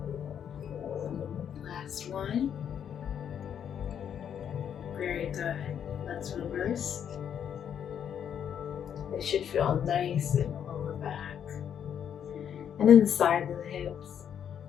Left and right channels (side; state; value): right; quieter; 8.7 dB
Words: Last one. Very good. Let's reverse. It should feel nice in the lower back. And then the sides of the hips.